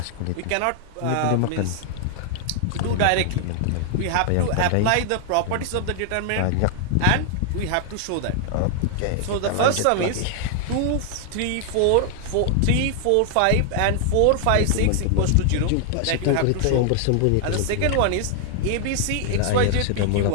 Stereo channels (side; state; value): both; different; correlation 0.00